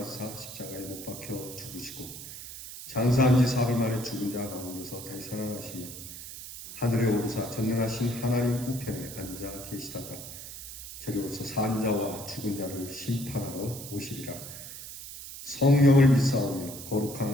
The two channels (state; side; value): noise; right; hiss, 11 dB below the sound